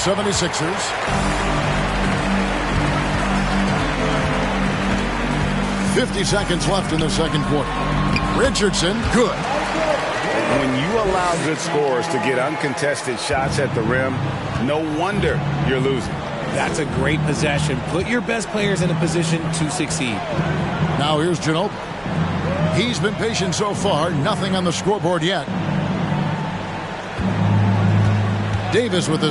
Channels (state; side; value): identical; both; correlation 1.00